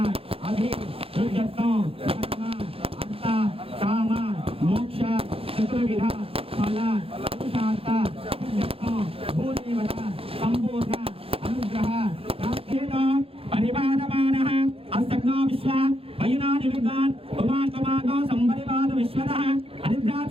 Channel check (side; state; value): left; late; 0.27 ms